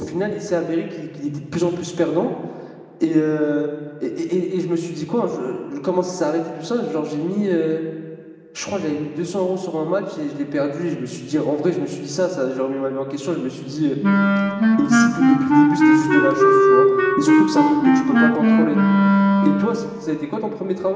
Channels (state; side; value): identical; both; correlation 1.00